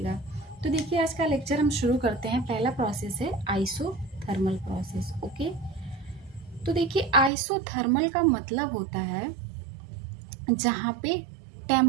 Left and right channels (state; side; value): drops out; left; at 7.3 s